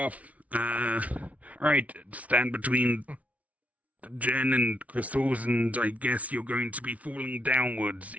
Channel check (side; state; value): left; late; 0.067 ms